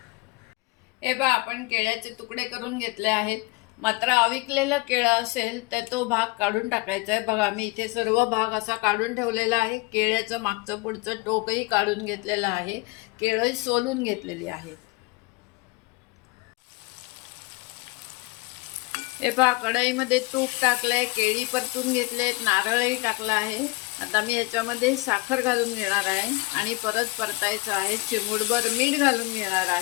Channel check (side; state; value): right; quieter; 24.9 dB